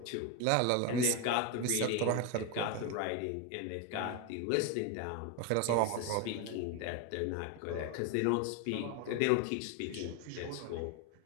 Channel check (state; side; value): different; both; correlation 0.02